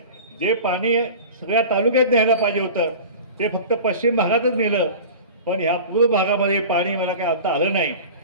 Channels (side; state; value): both; inverted; correlation -0.36